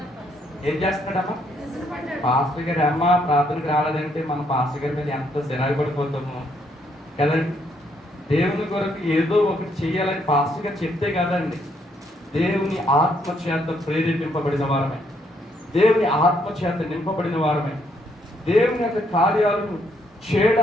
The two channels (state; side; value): normal; both; correlation 0.72